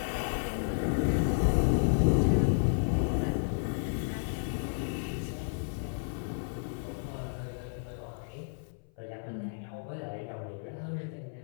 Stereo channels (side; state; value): right; silent; 56 dB below the other